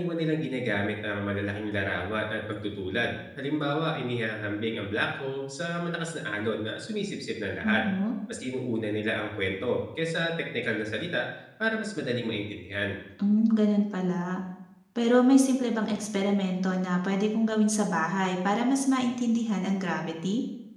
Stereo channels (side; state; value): both; identical; correlation 1.00